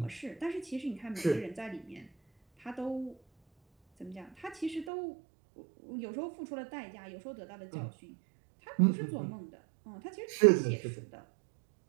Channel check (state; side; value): drops out; left; at 4.9 s